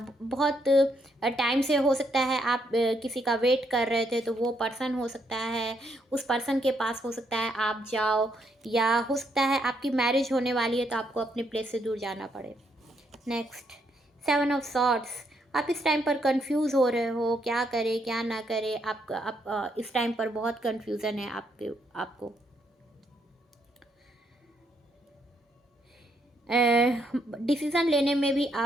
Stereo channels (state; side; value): normal; both; correlation 0.75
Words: बहुत टाइम से हो सकता है आप किसी का वेट कर रहे थे, तो वो पर्सन हो सकता है, उस पर्सन के पास हो सकता है आप जाओ, या हो सकता है आपकी मैरिज होने वाली है तो आपको अपने प्लेस से दूर जाना पड़े। नेक्स्ट, 7 ऑफ सॉर्ड्स, आप इस टाइम पर कंफ्यूज हो रहे हो, क्या करें क्या ना करें, आप इस टाइम पर बहुत कंफ्यूजन है आपको। डिसीज़न लेने में भी